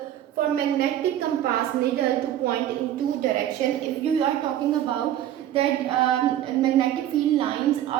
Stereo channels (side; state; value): left; quieter; 11.8 dB